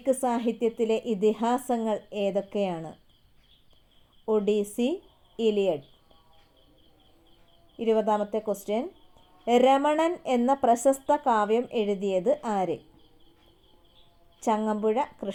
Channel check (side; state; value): both; identical; correlation 1.00